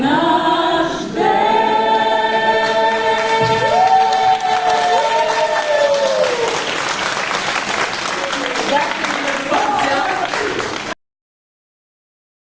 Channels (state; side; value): identical; both; correlation 1.00